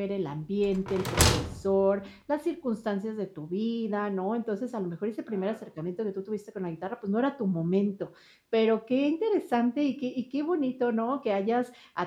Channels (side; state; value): both; identical; correlation 1.00